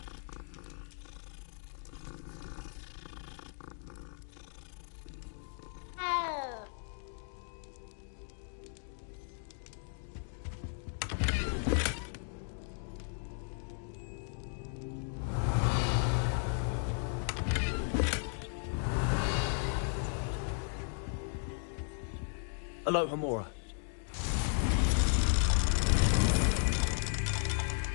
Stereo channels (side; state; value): right; silent; 54 dB below the other